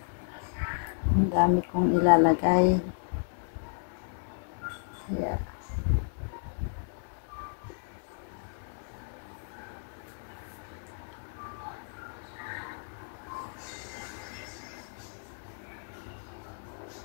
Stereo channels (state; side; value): silent; right; 56 dB below the other